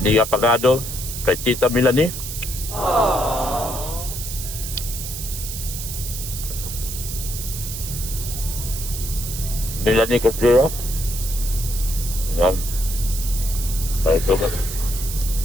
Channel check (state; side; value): noise; right; hiss, 7 dB below the sound